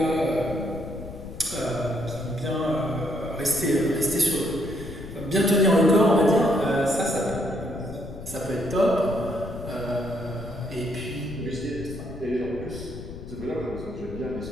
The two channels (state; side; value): noise; left; rumble, 12 dB below the sound